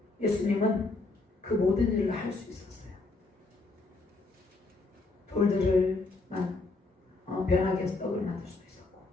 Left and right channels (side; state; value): right; quieter; 3.5 dB